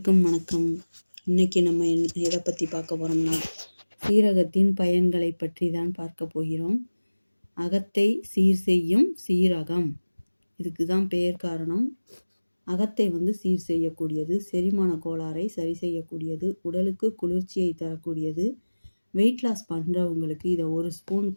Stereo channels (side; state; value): both; inverted; correlation -1.00